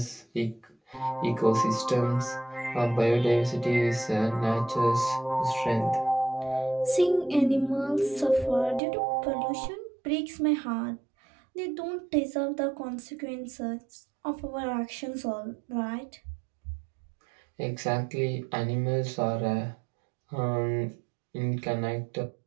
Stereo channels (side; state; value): left; drops out; at 8.8 s